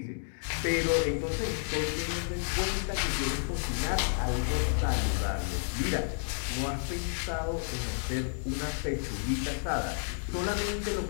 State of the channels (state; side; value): silent; right; digital silence